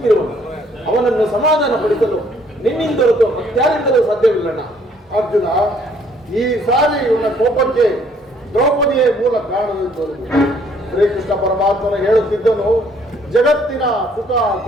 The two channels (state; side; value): normal; both; correlation 0.63